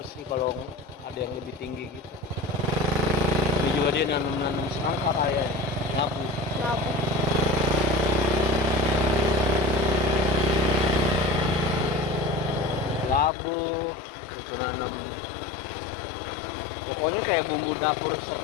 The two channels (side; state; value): right; drops out; at 13.3 s